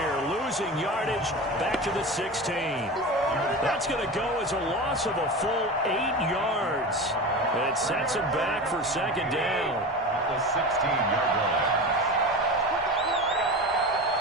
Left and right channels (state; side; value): normal; both; correlation 0.28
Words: losing yardage back to the 16. That's going to go as a loss of a full 8 yards. It sets him back for 2nd down. At the 16-yard line.